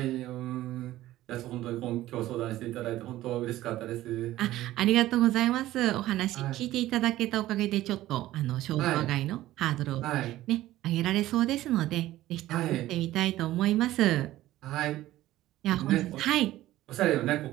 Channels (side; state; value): left; quieter; 15.3 dB